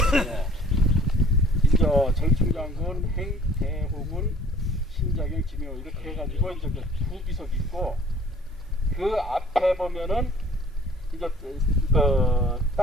이제 절충장군 행 대호군 신자경 지묘 이렇게 해가지고 이제 두 비석이 있고 그 앞에 보면은 이제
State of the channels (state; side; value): normal; both; correlation 0.53